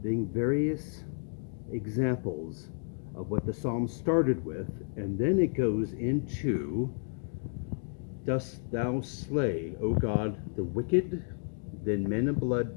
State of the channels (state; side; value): silent; right; 57 dB below the other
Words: various examples of what the psalm started with, and then it goes into, dost thou slay, O God, the wicked? Then men of blood